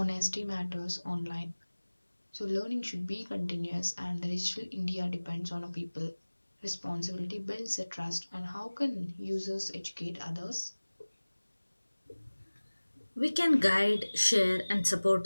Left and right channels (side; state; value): both; inverted; correlation -1.00